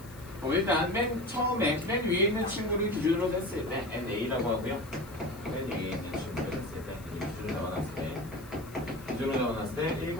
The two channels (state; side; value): noise; left; hiss, 21 dB below the sound